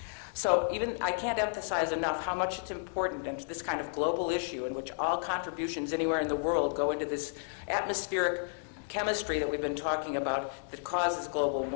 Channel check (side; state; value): right; silent; digital silence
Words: So even I can't emphasize enough how much it's important into this kind of global issue in which all contributions anywhere in the world go into this atmospheric chemistry that we've been talking about that causes global